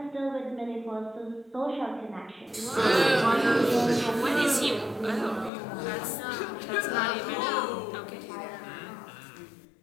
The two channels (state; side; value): drops out; right; at 5.5 s